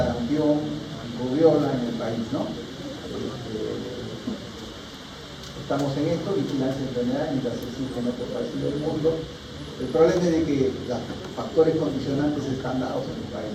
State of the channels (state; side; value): identical; both; correlation 1.00